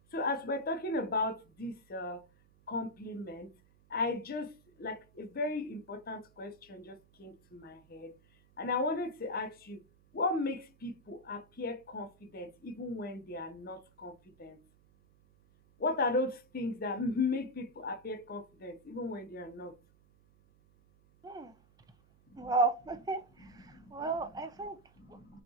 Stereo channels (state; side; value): noise; right; hum, 29 dB below the sound